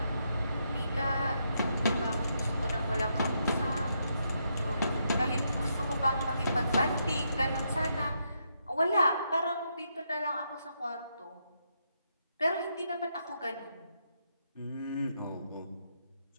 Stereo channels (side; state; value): both; inverted; correlation -0.79